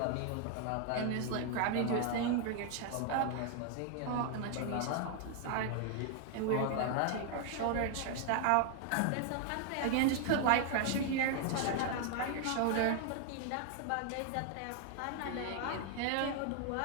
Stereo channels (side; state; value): both; different; correlation 0.00